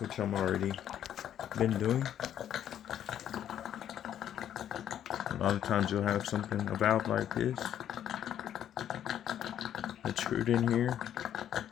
I'm already been doing. A lot of times you'll have a valve like this that's screwed in here,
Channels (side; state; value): right; quieter; 10.4 dB